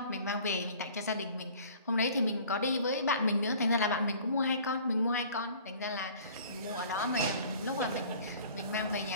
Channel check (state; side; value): inverted; both; correlation -0.49